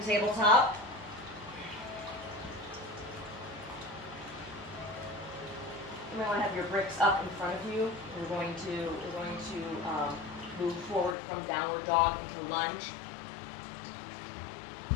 tabletop. You might want to have your bricks up in front of you. We're going to move forward from downward dog into lunge.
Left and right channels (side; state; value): right; drops out; at 11.2 s